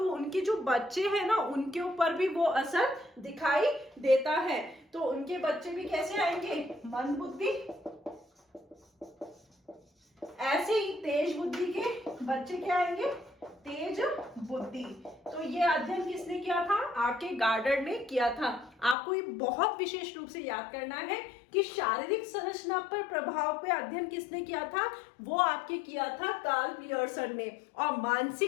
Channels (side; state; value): right; drops out; at 18.9 s